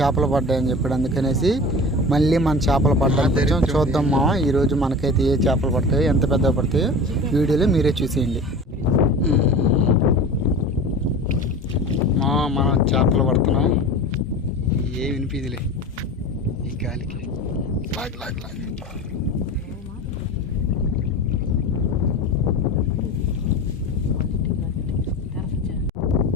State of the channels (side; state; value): both; normal; correlation 0.34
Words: పడ్డాయని చెప్పాడు. అందుకనేసి మళ్ళీ మన చేపలు పడ్డానికి చూద్దాం ఈరోజు మనకైతే ఏ చేపలు పడతాయో, ఎంత పెద్దగా పడతాయో వీడియోలో మీరే చూసేయండి. మనం చేపలు పడుతున్నాం. ఏ వినిపిదిలే ఈ గాలికి. లాగ్ లాగ్ లాగ్